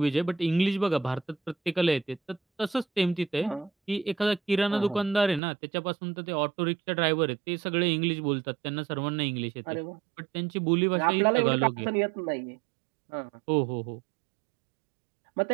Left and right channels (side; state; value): left; drops out; at 5.4 s